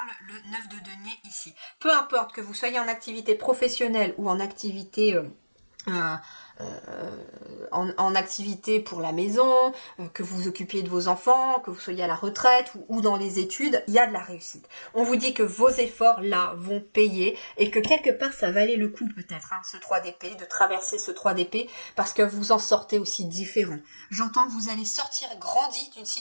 le 9 de denier ici. Peu importe que vous soyez en activité professionnelle ou en activité en activité pour la maison, que vous vous occupiez de vos enfants, que vous soyez à la retraite ou dans les études, il y a de la réussite. On vous dit que vos efforts là vont payer et que quelque part ça valait le coup peut-être, ce 3 d'épée, de traverser ce 3 d'épée parce que vous en sortez aussi différent. J'entends que vous allez sortir grandi d'une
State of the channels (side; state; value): both; inverted; correlation -1.00